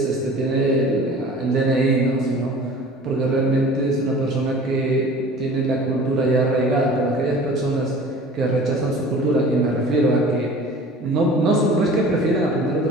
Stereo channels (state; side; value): normal; both; correlation 0.43